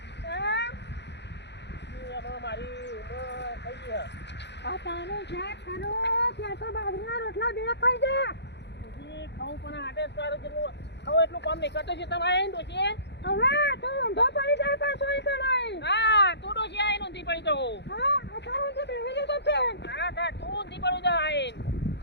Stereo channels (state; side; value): late; right; 0.50 ms